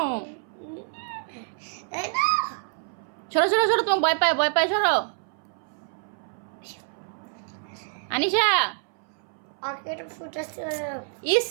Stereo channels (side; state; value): left; silent; 59 dB below the other